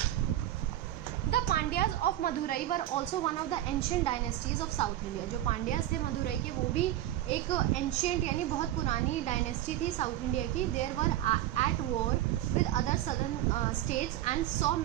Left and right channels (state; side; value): quieter; left; 13.6 dB